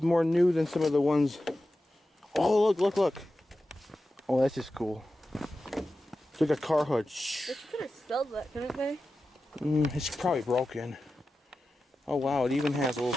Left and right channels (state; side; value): normal; both; correlation 0.93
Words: more new than some of the ones. Oh, look. Oh, that's just cool. It's like a car hood. They could have sold that, couldn't they? It's probably broken. Oh wow, it even has a